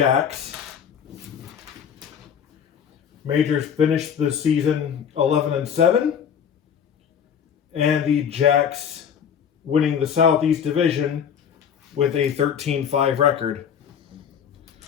Majors finished the season 11-7. And the Jacks winning the Southeast Division with a 13-5 record.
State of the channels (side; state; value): right; quieter; 8.0 dB